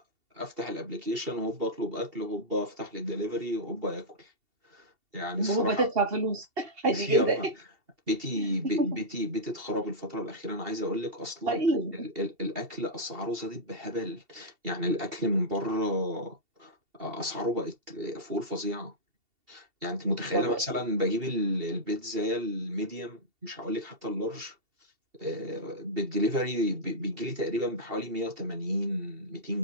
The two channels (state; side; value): late; left; 2.7 ms